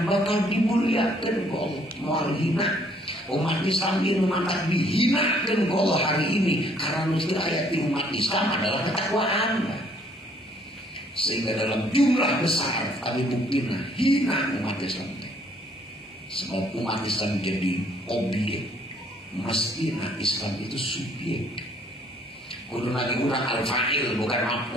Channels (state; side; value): normal; both; correlation 0.63